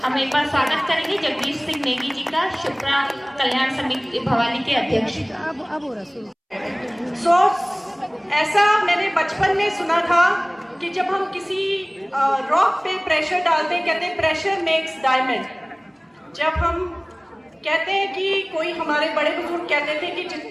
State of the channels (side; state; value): both; identical; correlation 1.00